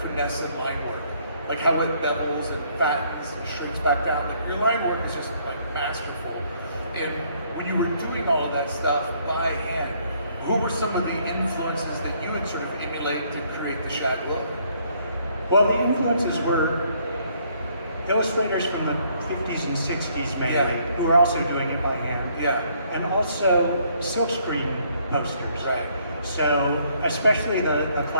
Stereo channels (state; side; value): inverted; both; correlation -0.66